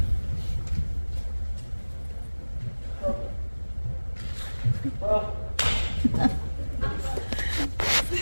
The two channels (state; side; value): inverted; both; correlation -1.00